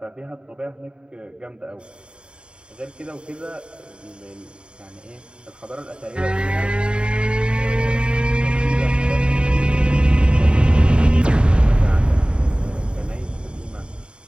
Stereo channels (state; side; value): late; left; 0.052 ms